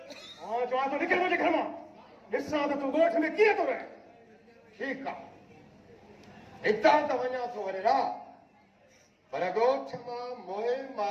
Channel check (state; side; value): identical; both; correlation 1.00